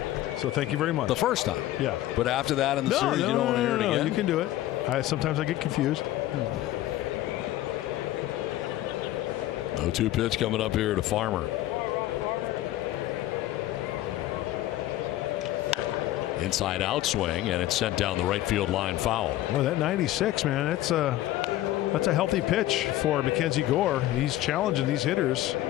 So thank you very much. The first time. Yeah. But after that in the series, you don't want to hear it again. You can do it. Sometimes I get confused. 0-2 pitch coming up here to Farmer. Inside out swing, and it's sent down the right field line foul. Well, that 96, man, that's a healthy pitch for Mackenzie Gore. He's challenging these hitters,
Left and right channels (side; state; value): right; quieter; 14.7 dB